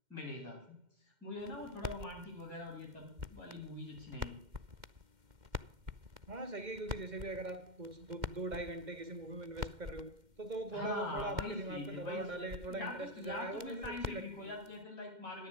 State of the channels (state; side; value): late; left; 2.1 ms